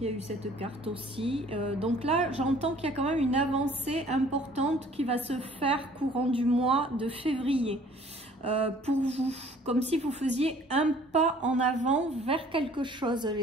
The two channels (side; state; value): both; normal; correlation 0.54